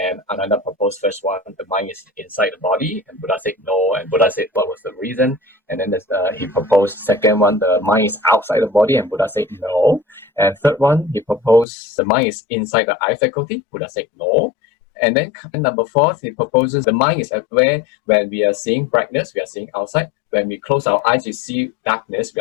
Ananda proposed first one, the mind is inside the body, and Buddha said no, and Buddha said what was the reason, and then he proposed second one, the mind is outside the body, and Buddha said no, and third one, he proposed the mind is inside the eye faculty, Buddha said no, and then number 4, he proposes the mind is aware when we are seeing brightness, we are seeing outside, when we close our eyes, we see darkness,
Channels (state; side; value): drops out; right; at 11.7 s